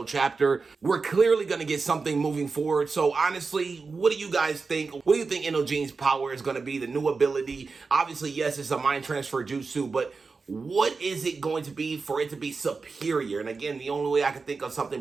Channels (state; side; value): quieter; left; 4.4 dB